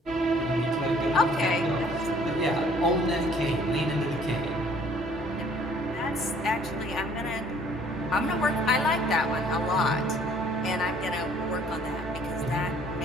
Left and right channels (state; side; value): normal; both; correlation 0.58